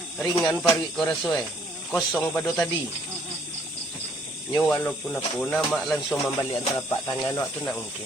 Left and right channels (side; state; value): both; normal; correlation 0.64